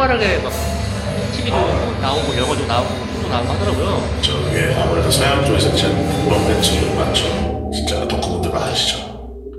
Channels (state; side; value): identical; both; correlation 1.00